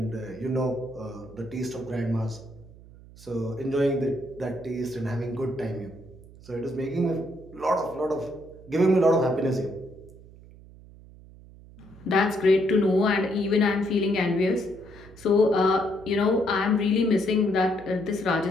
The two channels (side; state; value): right; noise; hum, 21 dB below the sound